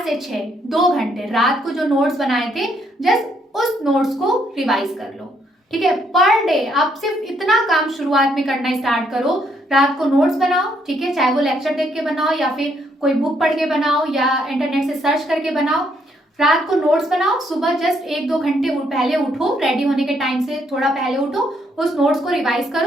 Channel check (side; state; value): both; normal; correlation 0.72